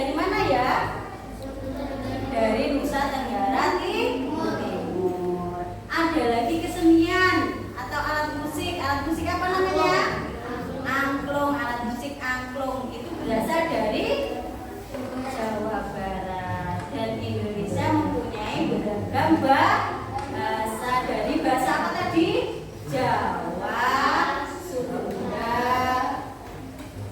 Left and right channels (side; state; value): both; identical; correlation 1.00